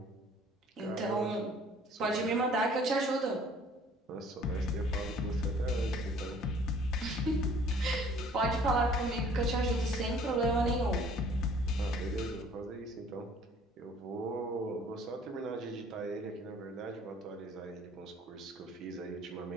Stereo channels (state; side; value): normal; both; correlation 0.55